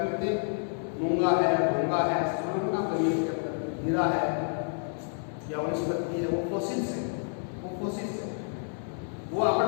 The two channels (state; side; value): silent; right; 58 dB below the other